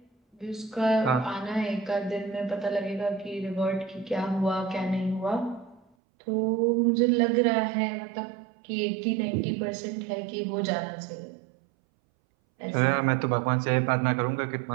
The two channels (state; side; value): drops out; left; at 5.8 s